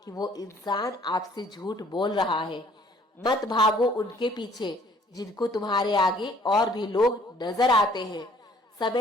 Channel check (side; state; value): both; normal; correlation 0.59